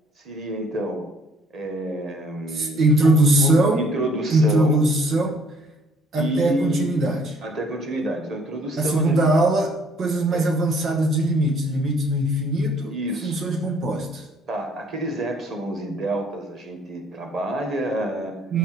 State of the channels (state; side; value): normal; both; correlation 0.61